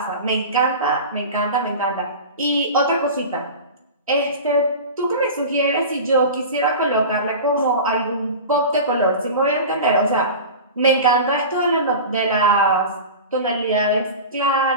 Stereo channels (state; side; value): inverted; both; correlation -0.31